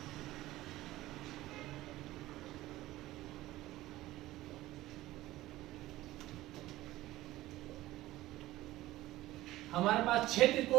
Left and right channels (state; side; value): quieter; left; 16.5 dB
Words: हमारे पास 6